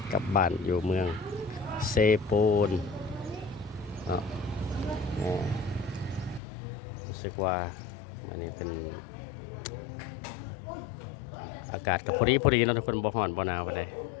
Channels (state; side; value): drops out; right; at 6.4 s